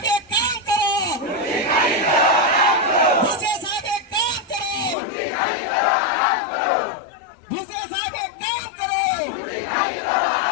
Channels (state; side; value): drops out; right; at 5.0 s